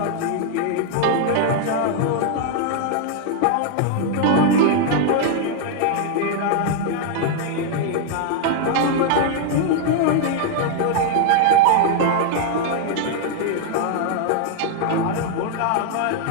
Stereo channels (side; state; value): both; different; correlation 0.00